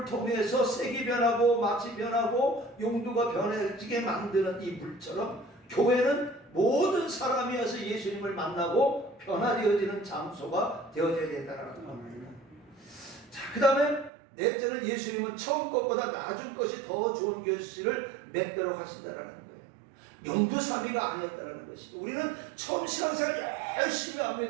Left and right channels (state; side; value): drops out; left; at 14.1 s